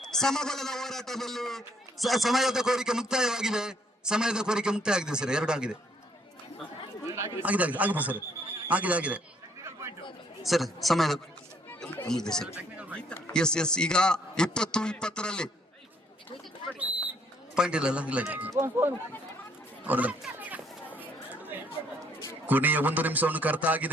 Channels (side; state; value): both; normal; correlation 0.67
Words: ಸಮಬಲದ ಹೋರಾಟದಲ್ಲಿ ಸಮಯದ ಕೋರಿಕೆ ಮುಕ್ತಾಯವಾಗಿದೆ. ಸರ್, 2 ಆಗಿದೆ ಸರ್. ಆಗಿದೆ ಸರ್, ಸಮಯದ ಮುಗಿದೆ ಸರ್. ಎಸ್ ಈಗ 20-20 ಪಾಯಿಂಟ್ ಇಲ್ಲ. ಕೊನೆಯ 1 ನಿಮಿಷವನ್ನು